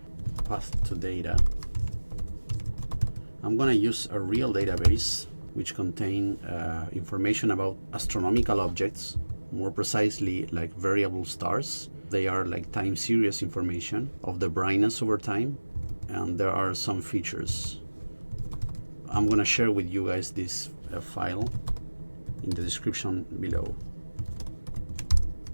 Path to data. I'm gonna use a real database which contain information about astronomical objects, more precisely like variable stars. They are like time series information of the brightness over time, and there are some features. I'm gonna share with you guys this file in the description below.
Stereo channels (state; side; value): inverted; both; correlation -1.00